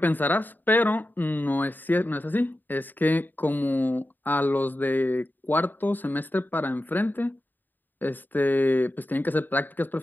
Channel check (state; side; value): late; right; 0.089 ms